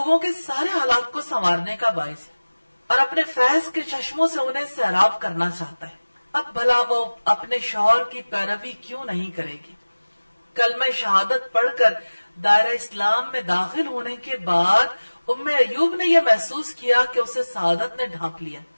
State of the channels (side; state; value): both; inverted; correlation -1.00